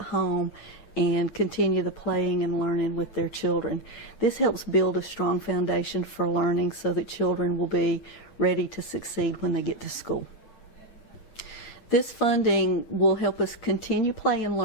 and continue the playing and learning with their children. This helps build a strong foundation for learning so that children will be ready to succeed when they get to school. This funding will help us continue Play and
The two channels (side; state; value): right; late; 8.8 ms